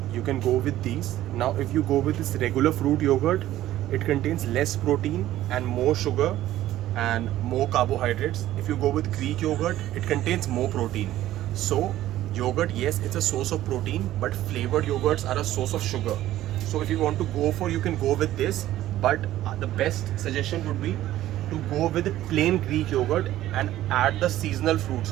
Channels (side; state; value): left; quieter; 14.0 dB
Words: you can go with these. Now if you go with this regular fruit yogurt, it contains less protein and more sugar and more carbohydrates. If you go with Greek yogurt, it contains more protein. So yogurt, yes, it's a source of protein, but flavored yogurts are a source of sugar. So if you want to go for, you can go with this, but the best suggestion would be to go with plain Greek yogurt and add the seasonal fruits,